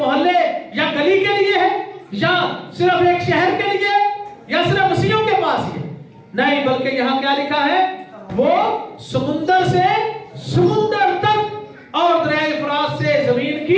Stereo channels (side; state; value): both; identical; correlation 1.00